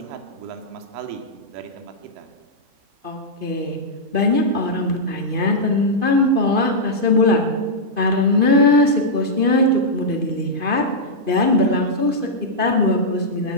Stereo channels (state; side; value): late; left; 2.5 ms